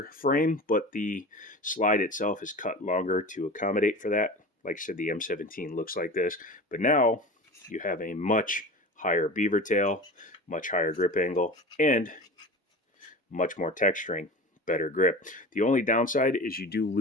frame, but the slide itself is cut longer to accommodate for that. Like I said, the M17 looks like this, but now you have a much higher beaver tail, much higher grip angle, and much more texturing. Better grip. The only downside is you do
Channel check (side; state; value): both; normal; correlation 0.33